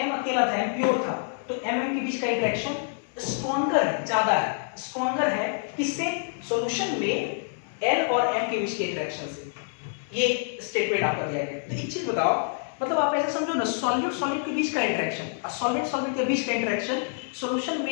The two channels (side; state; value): right; silent; 56 dB below the other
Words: अकेला था M प्योर था तो MM के बीच का इंटरेक्शन स्ट्रॉन्गर है, ज्यादा है, स्ट्रॉन्गर है किससे, सॉल्यूशन में L और M के बीच के इंटरेक्शन से। ये स्टेटमेंट आपका दिया गया। तो एक चीज बताओ, मतलब आप ऐसे समझो ना, सॉलिड के बीच का इंटरेक्शन और सॉलिड के बीच का इंटरेक्शन सॉल्यूशन